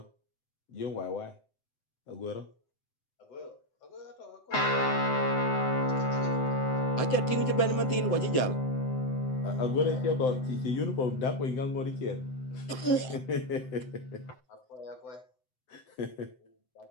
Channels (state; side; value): late; right; 7.8 ms